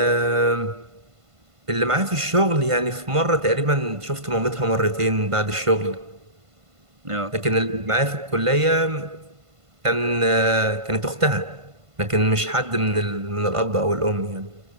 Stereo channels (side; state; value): left; late; 1.5 ms